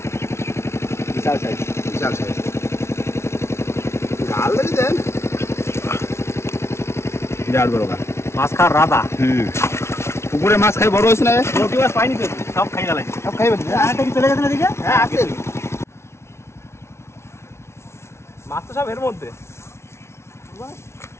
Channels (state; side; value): late; right; 0.13 ms